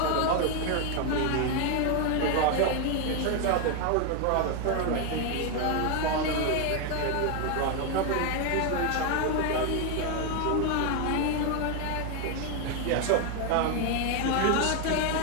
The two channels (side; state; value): both; different; correlation 0.01